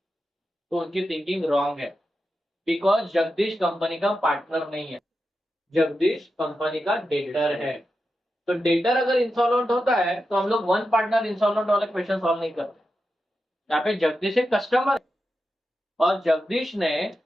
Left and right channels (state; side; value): normal; both; correlation 0.89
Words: उनकी थिंकिंग रॉन्ग है। बिकॉज जगदीश कंपनी का पार्टनर नहीं है, जगदीश कंपनी का डेटर है। तो डेटर अगर इंसॉल्वेंट होता है तो हम लोग वन पार्टनर इंसॉल्वेंट वाला क्वेश्चन सॉल्व नहीं करते। यहाँ पे जगदीश एक कस्टमर और जगदीश